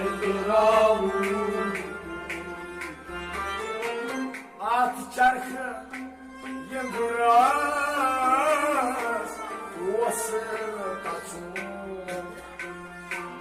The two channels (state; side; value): identical; both; correlation 1.00